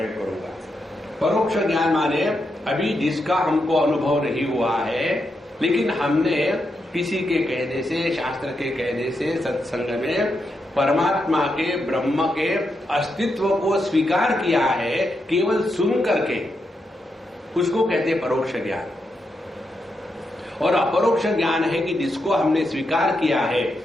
करूंगा। परोक्ष ज्ञान माने अभी जिसका हमको अनुभव नहीं हुआ है, लेकिन हमने किसी के कहने से, शास्त्र के कहने से, सत्संग में परमात्मा के, ब्रह्म के अस्तित्व को स्वीकार किया है, केवल सुन करके, उसको कहते हैं परोक्ष ज्ञान। और अपरोक्ष ज्ञान है कि जिसको हमने स्वीकार किया है,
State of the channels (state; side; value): normal; both; correlation 0.84